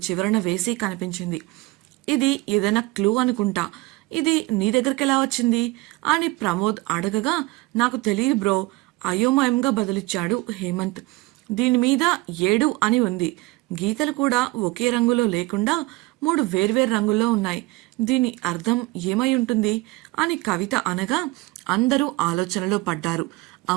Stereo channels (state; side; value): quieter; left; 21.9 dB